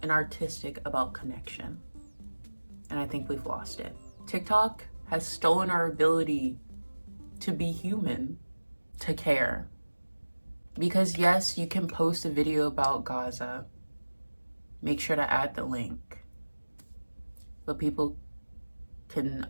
and artistic about connection. And I think we've lost it. TikTok has stolen our ability to be human, to care. Because yes, you can post a video about Gaza. Make sure to add the link. But people can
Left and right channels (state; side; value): inverted; both; correlation -1.00